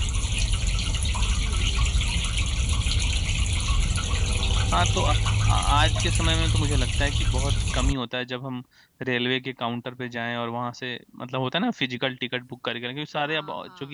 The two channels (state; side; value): identical; both; correlation 1.00